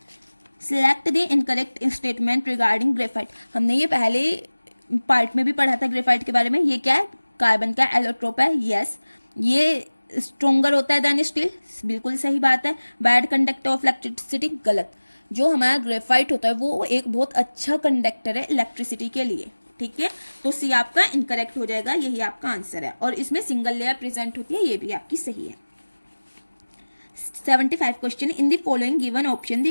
select the incorrect statement regarding graphite. हमने ये पहले पार्ट में भी पढ़ा था ग्रेफाइट के बारे में। ये क्या है, कार्बन का एलोट्रोप है। यस, ये स्ट्रोंगर होता है देन स्टील, बिल्कुल सही बात है। बैड कंडक्टर ऑफ इलेक्ट्रिसिटी, गलत। जो हमारा ग्रेफाइट होता है वो एक बहुत अच्छा कंडक्टर है इलेक्ट्रिसिटी के लिए, ठीक है। तो सी आपका इनकरेक्ट हो जाएगा, यही आपका आंसर है। और इसमें सिंगल लेयर प्रेजेंट होती है, ये भी आपकी सही है। 75 question. In the following given option,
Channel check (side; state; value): both; inverted; correlation -1.00